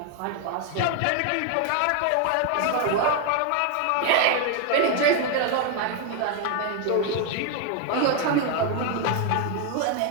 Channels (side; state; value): both; different; correlation 0.01